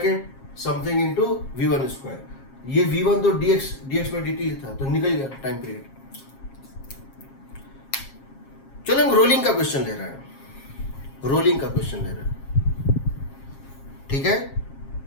something into v1 square. ये v1 तो dx/dt था, तो निकल गया टाइम पीरियड। चलो हम रोलिंग का क्वेश्चन ले रहे हैं, रोलिंग का क्वेश्चन ले रहे हैं, ठीक है।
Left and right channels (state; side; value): late; right; 7.4 ms